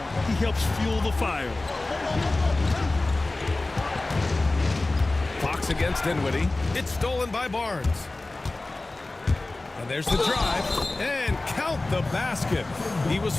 he helps fuel the fire. Fox against Dinwiddie. It's stolen by Barnes. And there's the drive. And count the basket. He was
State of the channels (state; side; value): quieter; right; 3.0 dB